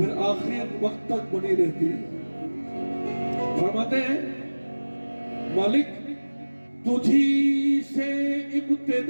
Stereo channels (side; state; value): both; inverted; correlation -1.00